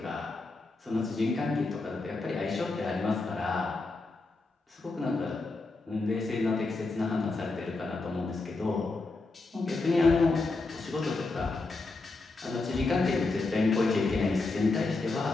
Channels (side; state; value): right; quieter; 3.5 dB